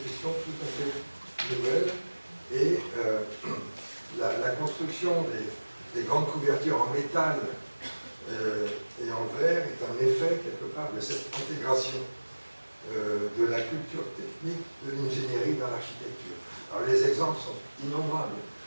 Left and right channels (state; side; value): inverted; both; correlation -1.00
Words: tout à fait nouvelles. Et la construction des grandes couvertures en métal et en verre est un effet quelque part de cette intégration de la culture technique de l'ingénierie dans l'architecture. Alors les exemples sont innombrables.